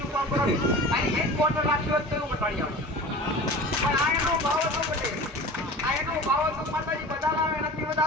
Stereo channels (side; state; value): both; normal; correlation 0.37